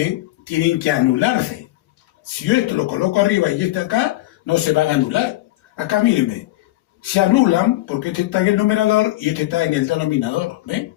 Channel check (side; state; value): right; quieter; 17.5 dB